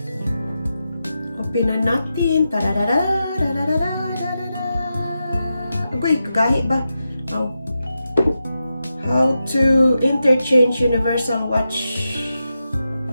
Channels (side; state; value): both; inverted; correlation -0.88